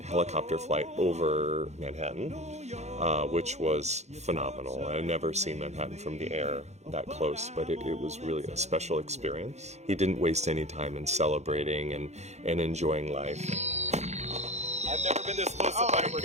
helicopter flight over Manhattan, which was phenomenal. I had never seen Manhattan from the air that close, but it was really a special experience. He didn't waste any time in celebrating and enjoying life. I've never been this close to Oh my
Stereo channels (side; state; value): left; late; 0.32 ms